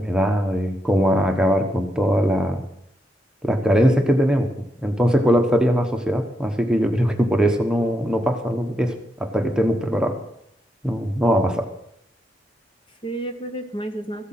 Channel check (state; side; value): normal; both; correlation 0.82